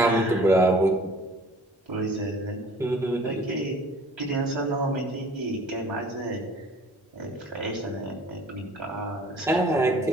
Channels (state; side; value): normal; both; correlation 0.51